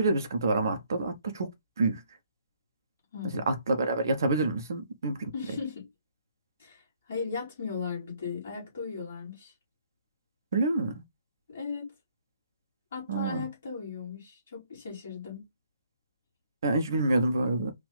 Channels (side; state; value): both; inverted; correlation -0.66